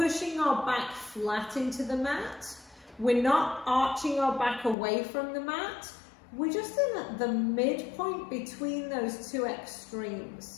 our back flat into the mat, We're not arching our back away from the mat. We're just in at the midpoint between those two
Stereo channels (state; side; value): drops out; right; at 4.8 s